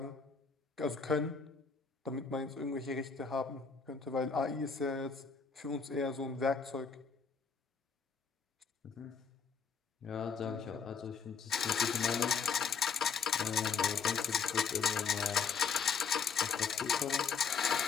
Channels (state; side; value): quieter; right; 5.7 dB